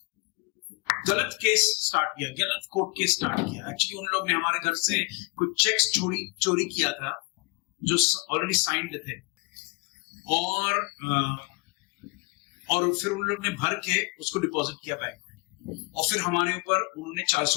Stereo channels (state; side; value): quieter; right; 31.5 dB